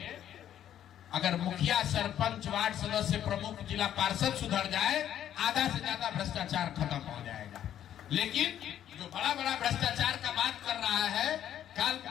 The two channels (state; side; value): quieter; right; 10.8 dB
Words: अगर मुखिया, सरपंच, वार्ड सदस्य, प्रमुख, जिला पार्षद सुधर जाए, आधा से ज्यादा भ्रष्टाचार खत्म हो जाएगा। लेकिन जो बड़ा बड़ा भ्रष्टाचार का बात कर रहा है, कल